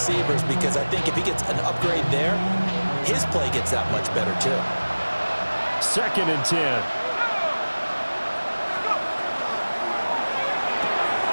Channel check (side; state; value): both; inverted; correlation -1.00